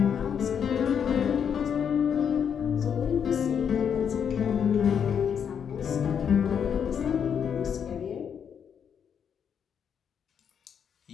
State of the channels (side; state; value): right; quieter; 7.7 dB